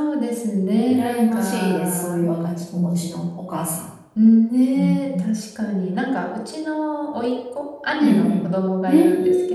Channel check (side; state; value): both; identical; correlation 1.00